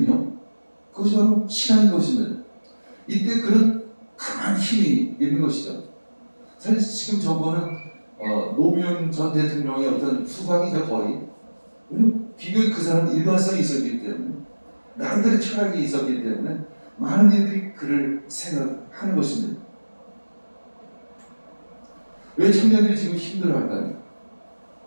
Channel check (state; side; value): inverted; both; correlation -1.00